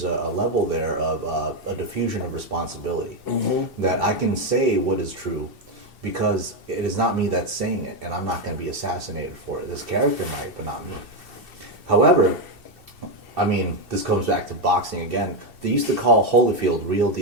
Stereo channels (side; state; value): left; late; 2.6 ms